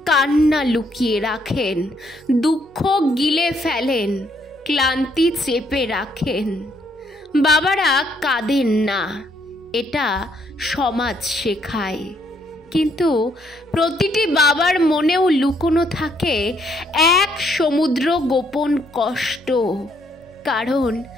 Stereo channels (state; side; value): normal; both; correlation 0.71